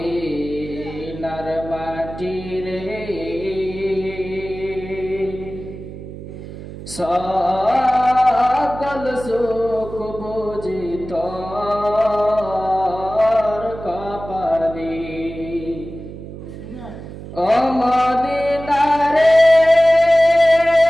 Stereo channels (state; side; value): noise; right; hum, 12 dB below the sound